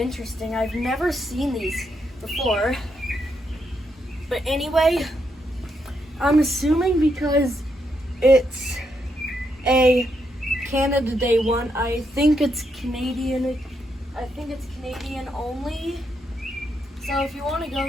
I've never seen these before. But anyway, I'm assuming because it's a Canada Day one, I think it's Canadian. I think it's Canadian only. So if you want to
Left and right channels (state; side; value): normal; both; correlation 0.79